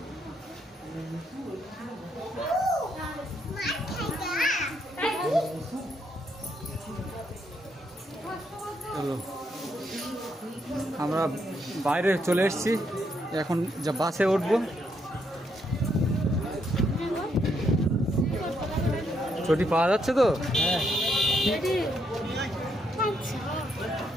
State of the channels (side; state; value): both; normal; correlation 0.76